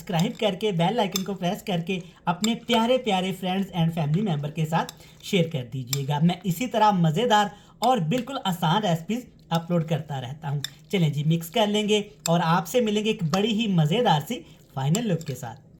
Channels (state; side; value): identical; both; correlation 1.00